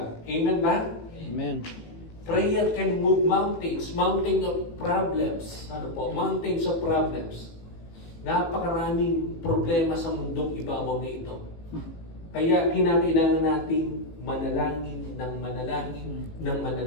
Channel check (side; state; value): right; late; 18 ms